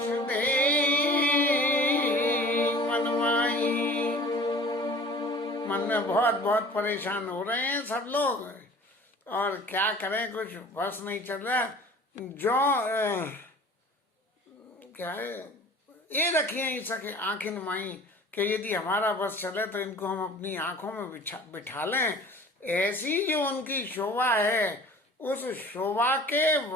दे मनमाई। मन में बहुत परेशान हो रहे हैं सब लोग और क्या करें, कुछ बस नहीं चल रहा। जो क्या है, ये रखिए ही सके आंखें माई कि यदि हमारा बस चले तो इनको हम अपनी आंखों में बिठा लें। ऐसी जो उनकी शोभा है, उस शोभा के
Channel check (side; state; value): both; normal; correlation 0.45